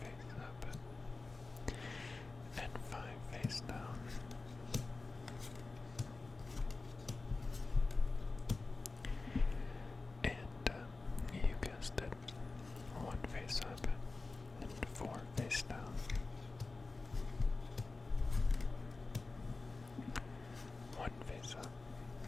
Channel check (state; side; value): quieter; right; 3.6 dB